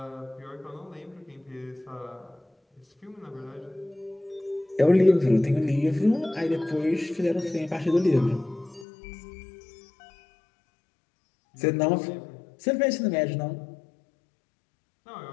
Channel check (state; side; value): drops out; right; at 8.8 s